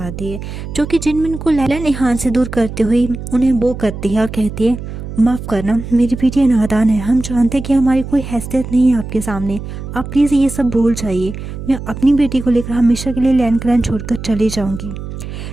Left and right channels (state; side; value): noise; right; hum, 9 dB below the sound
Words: है जो कि जिनमिन को लैलन इहान से दूर करते हुए उन्हें वो करती है और कहती है, माफ़ करना, मेरी बेटी नादान है। हम जानते हैं कि हमारी कोई हैसियत नहीं है आपके सामने। आप प्लीज़ ये सब भूल जाइए। मैं अपनी बेटी को लेकर हमेशा के लिए लैंड क्लैन छोड़कर चली जाऊंगी।